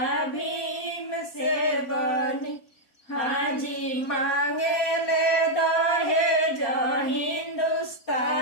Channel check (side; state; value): right; late; 4.2 ms